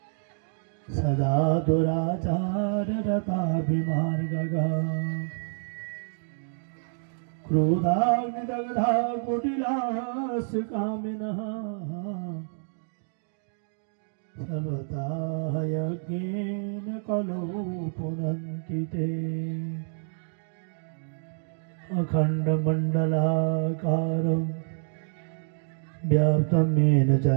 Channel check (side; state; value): left; silent; digital silence